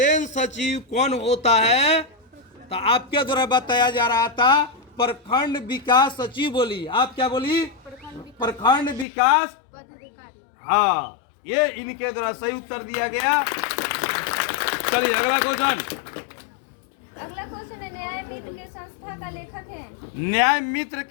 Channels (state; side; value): drops out; right; at 9.1 s